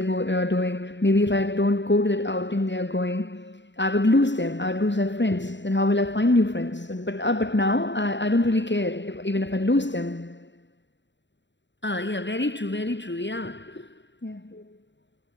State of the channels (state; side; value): late; right; 0.52 ms